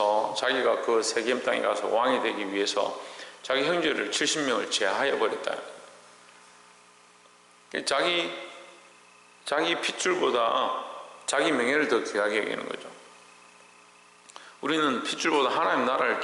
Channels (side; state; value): both; identical; correlation 1.00